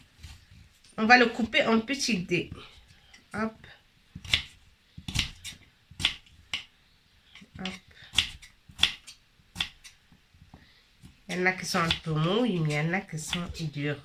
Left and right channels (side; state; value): both; identical; correlation 1.00